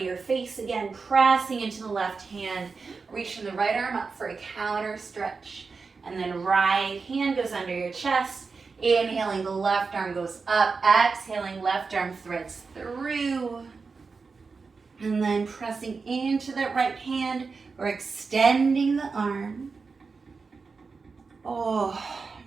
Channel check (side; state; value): left; quieter; 4.7 dB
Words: your face again, pressing into the left hand, reaching the right arm up for a counter stretch. And then right hand goes under your chest. Inhaling, the left arm goes up. Exhaling, left arm threads through. And then pressing into that right hand, or extending the arm.